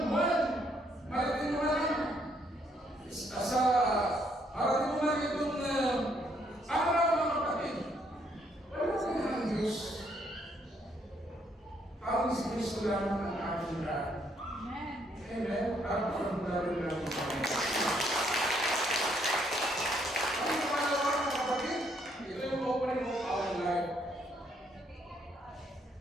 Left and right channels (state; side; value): normal; both; correlation 0.71